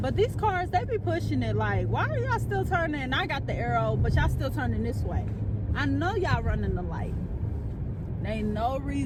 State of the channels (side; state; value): both; identical; correlation 1.00